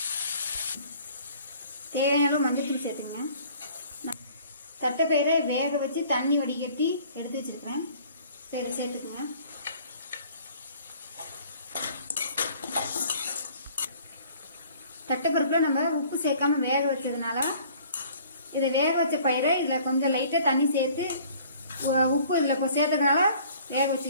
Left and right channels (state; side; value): inverted; both; correlation -0.53